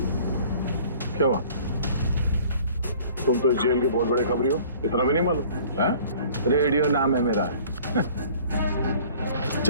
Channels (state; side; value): inverted; both; correlation -0.50